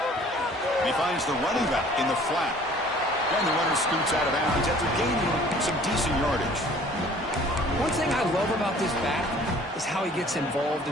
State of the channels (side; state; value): both; normal; correlation 0.52